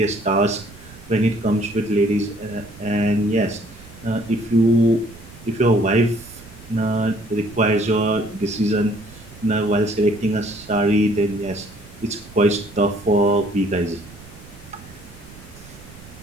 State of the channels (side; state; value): right; noise; rumble, 20 dB below the sound